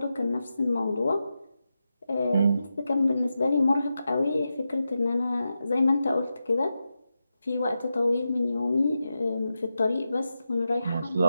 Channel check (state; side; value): inverted; both; correlation -0.90